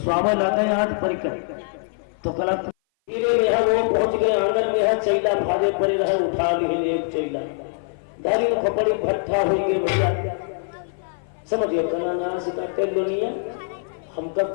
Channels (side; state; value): right; silent; 57 dB below the other